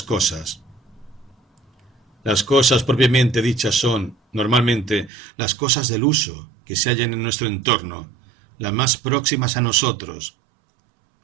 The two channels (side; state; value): left; drops out; at 5.1 s